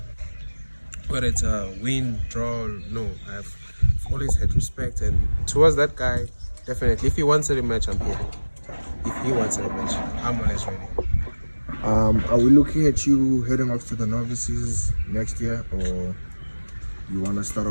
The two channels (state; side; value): inverted; both; correlation -1.00